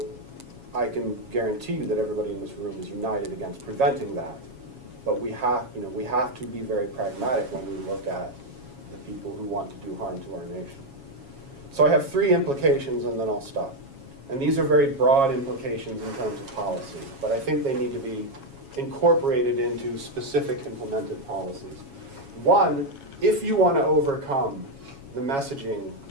I can guarantee you that everybody in this room is united against preventing that. But we have to be very pragmatic when we look at the people who want to do harm to our nation. So I have 3 implications and then I'll stop. And these are very broad implications in terms of policy, but I think they need to be incorporated into specific implemented policies. One, if you want to overcome the messaging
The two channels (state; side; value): late; left; 7.3 ms